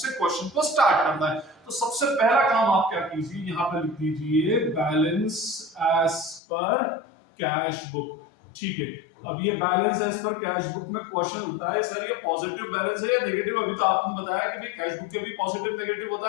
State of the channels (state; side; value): drops out; right; at 6.4 s